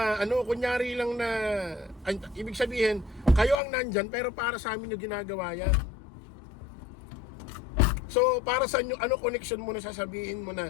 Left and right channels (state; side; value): drops out; right; at 3.6 s